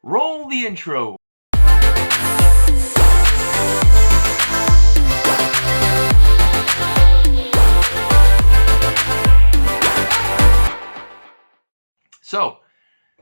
roll the intro! So,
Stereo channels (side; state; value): both; inverted; correlation -1.00